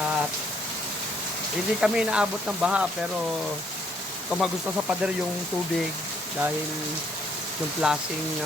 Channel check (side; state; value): both; normal; correlation 0.68